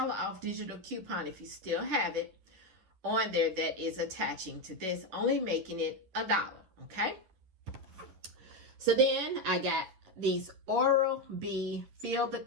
digital coupon if you still have it on there that is attaching to this, only making it $1, okay? So then I got these Oral-B Feel the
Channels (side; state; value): left; late; 10 ms